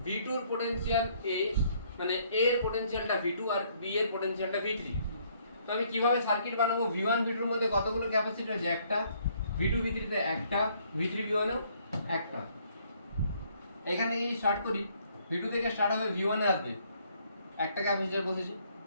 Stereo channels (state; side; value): inverted; both; correlation -0.66